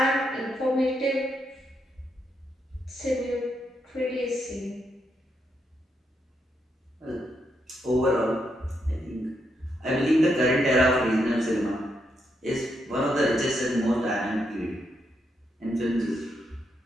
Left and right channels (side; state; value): both; normal; correlation 0.80